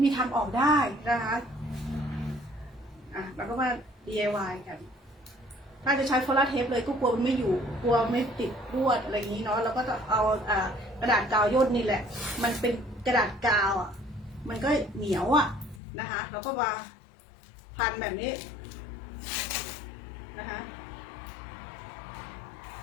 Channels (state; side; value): drops out; right; at 15.8 s